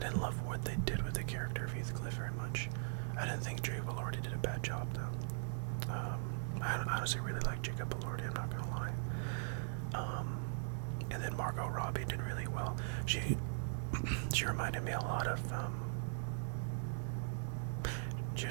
love what they did with the character of Heathcliff very much. I didn't think Jacob Elordi did a bad job though. I honestly really like Jacob Elordi, I'm not gonna lie. And then Margot Robbie did really well. She reminded me a lot of she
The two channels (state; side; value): silent; left; digital silence